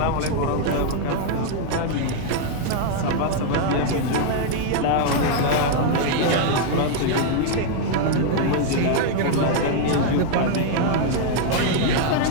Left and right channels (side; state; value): both; different; correlation 0.00